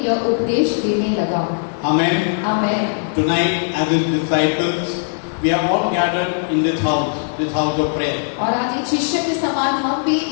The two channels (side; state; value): right; silent; 57 dB below the other